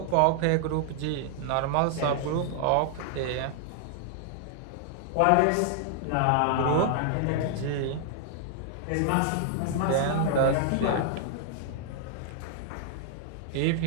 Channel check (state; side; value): different; both; correlation 0.00